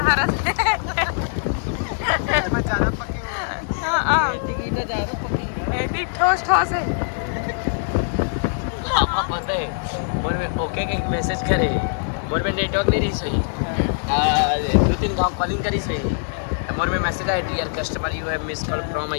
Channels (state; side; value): silent; right; digital silence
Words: हरस ठोस ठोस है। पता है मोर में ओके के मैसेज करे मोर में नेटवर्क नहीं रही सही 2-3 गांव कॉलिंग करी सही मोर में मैसेज आया dear customer you have miss call from